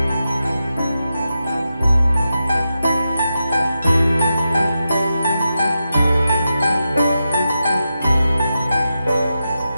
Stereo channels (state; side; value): inverted; both; correlation -0.89